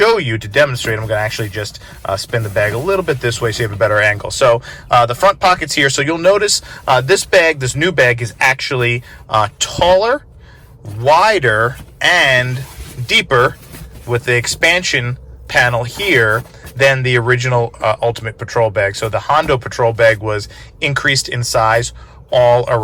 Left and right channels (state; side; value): identical; both; correlation 1.00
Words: you, to demonstrate. I'm going to actually just spin the bag a little bit this way so you have a better angle. So the front pockets here. So you'll notice this new bag is actually taller, wider, and deeper with the expansion panel here than the original Ultimate Patrol Bag. So the Hondo Patrol Bag was increased in size all